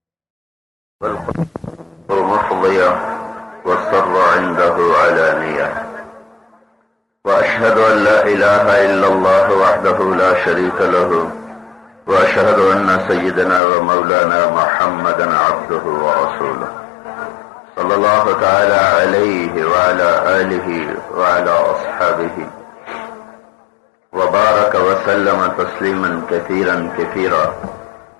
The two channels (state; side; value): drops out; right; at 13.6 s